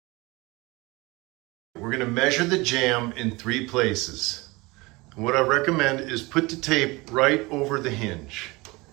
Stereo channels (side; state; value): left; quieter; 23.5 dB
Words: We're going to measure the jamb in 3 places. And what I recommend is put the tape right over the hinge